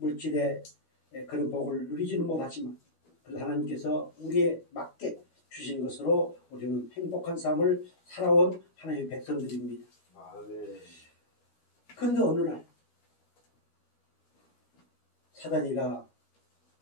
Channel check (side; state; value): right; late; 12 ms